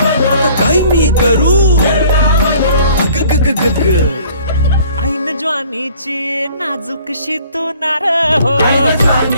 आता काय मी करू अग ग ग ग ग ऐन ज्वानीची नाजूकशी तू नार हो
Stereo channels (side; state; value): both; inverted; correlation -0.54